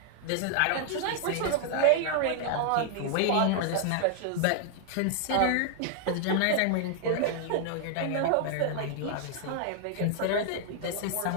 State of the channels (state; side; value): different; both; correlation 0.00